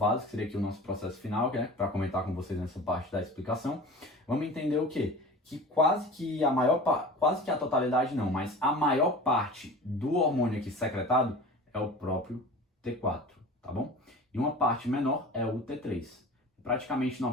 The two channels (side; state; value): both; normal; correlation 0.38